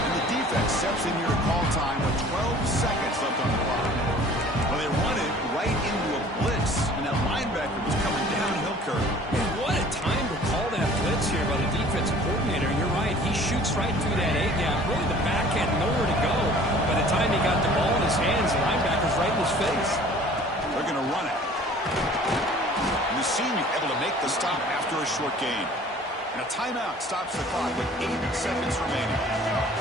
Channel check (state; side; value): normal; both; correlation 0.49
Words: the defense steps in here to call time with 12 seconds left on the clock. Well, they run it right into a blitz, and that linebacker was coming downhill, Kurt. What a time to call that blitz here by the defensive coordinator. You're right. He shoots right through that A-gap. Really, the back had nowhere to go. By the time he got the ball in his hands, the linebacker's right in his face. They're going to run it. And the senior able to make the stop after a short gain. And a timeout stops the clock with 8 seconds remaining.